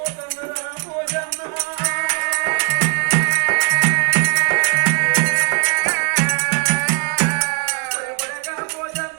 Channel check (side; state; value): left; quieter; 37.1 dB